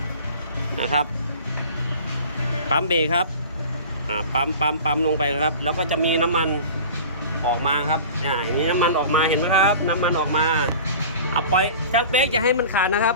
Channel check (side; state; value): both; inverted; correlation -0.40